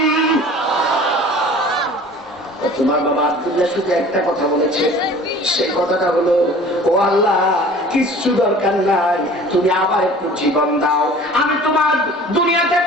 তোমার বাবা আব্দুল্লাহ শুধু একটা কথা বলেছে, সেই কথাটা হলো, ও আল্লাহ, কিচ্ছু দরকার নাই, তুমি আবার একটু জীবন দাও, আমি তোমার দুনিয়াতে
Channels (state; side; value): normal; both; correlation 0.45